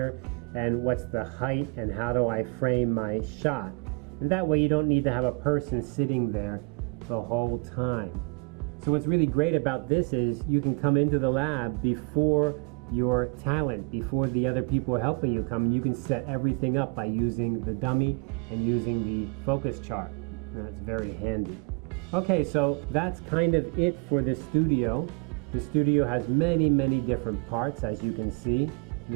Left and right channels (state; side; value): quieter; left; 31.6 dB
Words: and what's the height, and how do I frame my shot. And that way you don't need to have a person sitting there the whole time. So what's really great about this is you can come into the lab before your talent, before the other people are helping you come, and you can set everything up by using the dummy and using the focus chart. And that's very handy. Okay, so that's kind of it for the studio. The studio has many, many different parts, as you can see.